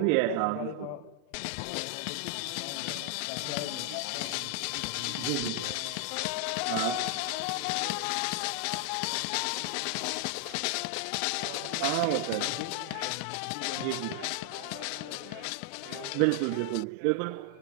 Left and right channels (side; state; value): both; different; correlation 0.00